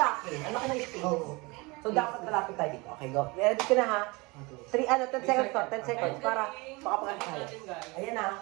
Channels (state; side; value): quieter; left; 25.7 dB